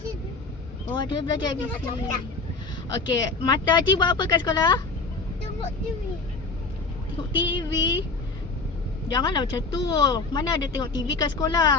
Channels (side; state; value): right; quieter; 4.0 dB